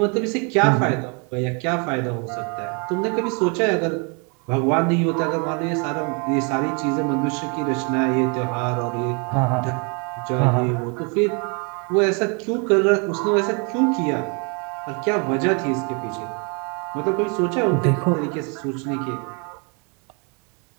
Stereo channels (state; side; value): quieter; left; 34.9 dB